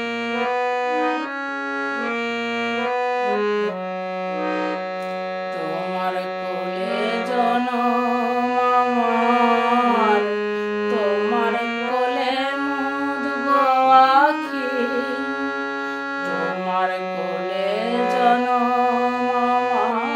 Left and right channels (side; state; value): both; identical; correlation 1.00